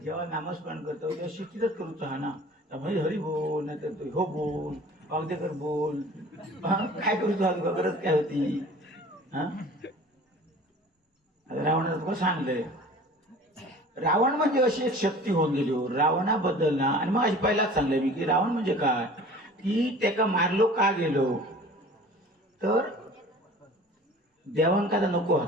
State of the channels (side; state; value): both; normal; correlation 0.44